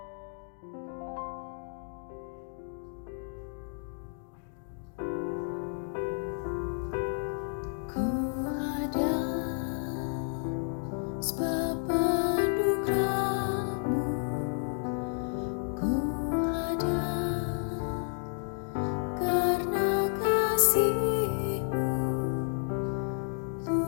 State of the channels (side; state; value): right; silent; 57 dB below the other